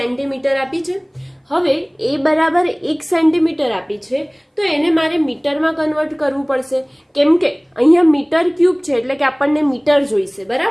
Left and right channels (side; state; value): both; identical; correlation 1.00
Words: આપી છે. હવે એ બરાબર 1 સેન્ટીમીટર આપી છે, તો એને મારે મીટરમાં કન્વર્ટ કરવું પડશે, કેમ કે અહીંયા મીટર ક્યુબ છે એટલે કે આપણને મીટર જોઈશે,